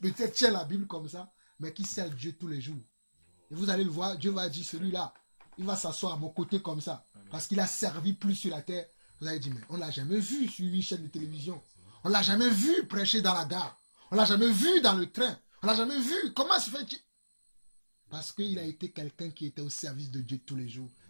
tient la Bible comme ça, mais qui sert Dieu tous les jours. Et vous allez le voir, Dieu va dire, celui-là, il va s'asseoir à mon côté comme ça, parce qu'il a servi plus sur la terre. Vous allez dire, mais on ne l'a jamais vu sur une chaîne de télévision. On ne l'a jamais vu prêcher dans la gare. On ne l'a jamais vu dans le train. On ne l'a jamais vu. Comment se fait-il? Parce qu'il a été quelqu'un qui était au service de Dieu tous les jours.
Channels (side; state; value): both; inverted; correlation -1.00